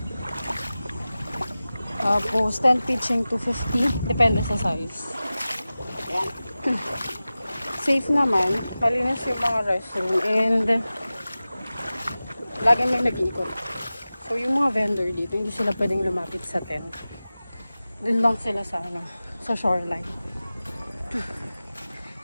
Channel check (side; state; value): both; inverted; correlation -0.96